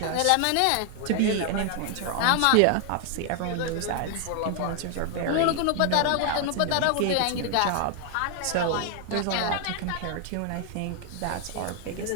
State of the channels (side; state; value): both; different; correlation 0.00